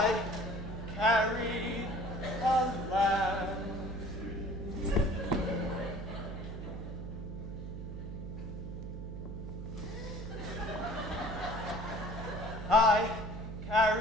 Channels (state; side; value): noise; right; hum, 7 dB below the sound